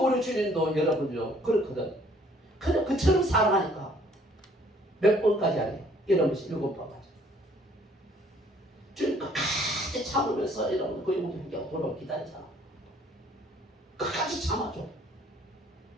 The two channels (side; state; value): both; normal; correlation 0.60